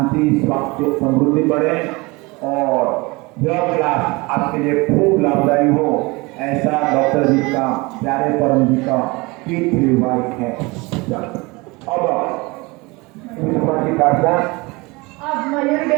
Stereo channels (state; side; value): quieter; left; 24.7 dB